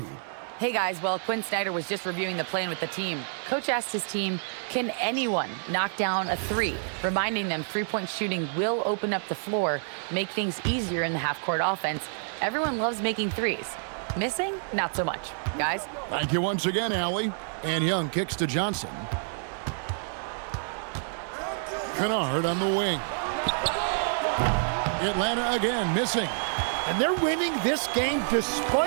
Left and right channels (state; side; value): silent; left; digital silence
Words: Hey guys, well, Quinn Snyder was just reviewing the plan with the team. Coach asked his team, can anyone knock down a 3? Reminding them 3-point shooting will open up the floor, make things easier in the half-court offense. Everyone loves making 3s. Missing? Not so much. Guys? Thank you once again, Allie. And Young kicks to Johnson. Kennard on the wing. Atlanta again missing. And they're winning this game